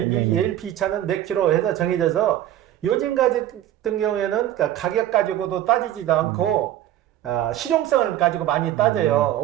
ALP 차는 몇 킬로 해서 정해져서 요즘 같은 경우에는 가격 가지고도 따지지도 않고 실용성을 가지고 많이 따져요.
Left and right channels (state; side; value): quieter; left; 12.5 dB